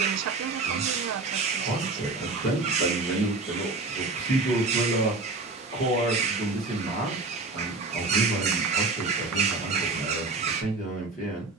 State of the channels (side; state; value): left; quieter; 3.7 dB